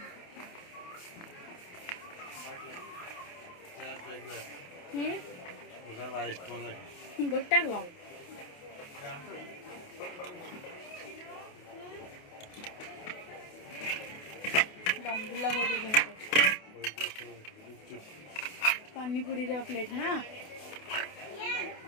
गोटा को दमदुला बहुत पानीपुरी प्लेट हाँ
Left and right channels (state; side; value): late; right; 28 ms